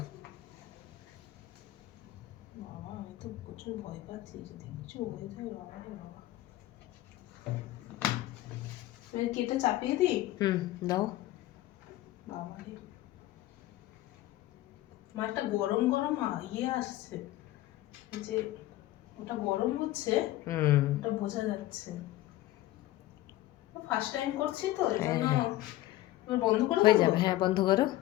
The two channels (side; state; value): right; quieter; 15.9 dB